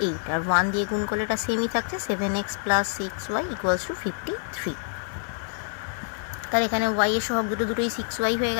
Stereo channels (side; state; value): right; silent; digital silence